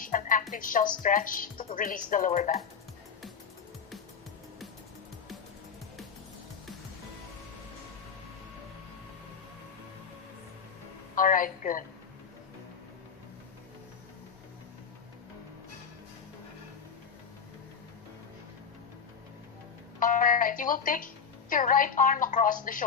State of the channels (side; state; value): right; quieter; 6.6 dB